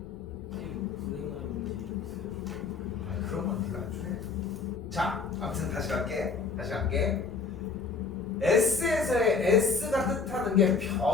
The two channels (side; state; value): right; quieter; 4.9 dB